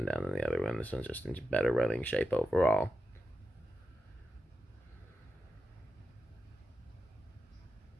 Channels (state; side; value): normal; both; correlation 0.90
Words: down than the other one. This one's just in better running shape overall.